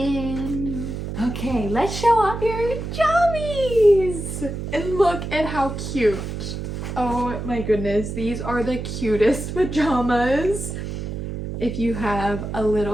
Okay, let's show off your jammies. And look at how cute. Oh my goodness, these are the cutest pajamas. If you have a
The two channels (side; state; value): right; noise; hum, 6 dB below the sound